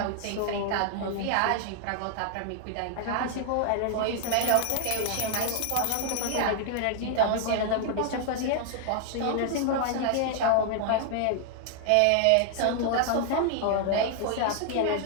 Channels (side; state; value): both; different; correlation 0.00